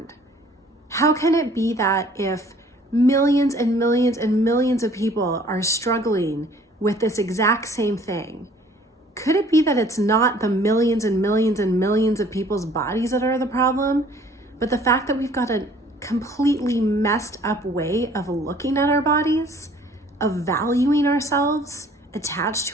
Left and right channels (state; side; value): normal; both; correlation 0.55